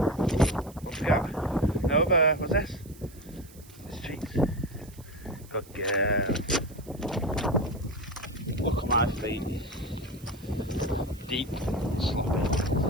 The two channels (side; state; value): right; noise; hiss, 23 dB below the sound